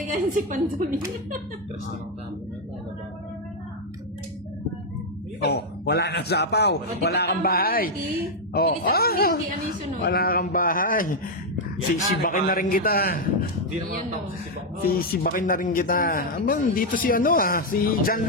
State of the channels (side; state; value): both; normal; correlation 0.00